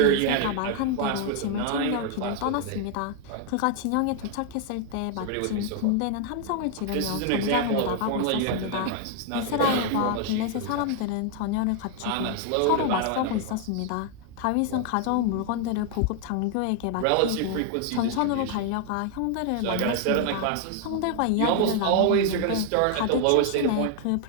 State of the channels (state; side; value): different; both; correlation 0.00